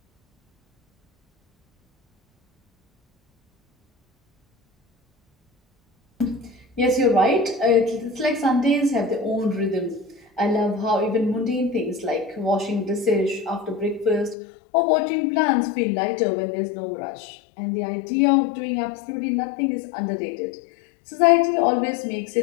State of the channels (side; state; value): right; drops out; at 14.4 s